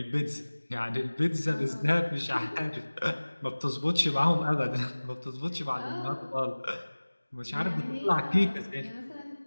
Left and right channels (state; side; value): inverted; both; correlation -1.00